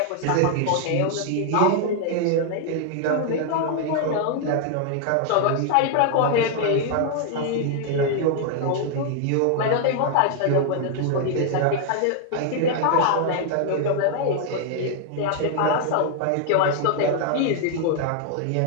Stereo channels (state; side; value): different; both; correlation 0.00